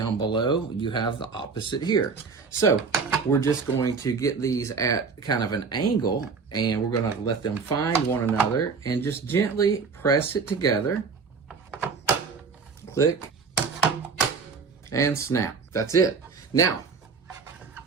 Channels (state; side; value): quieter; left; 5.2 dB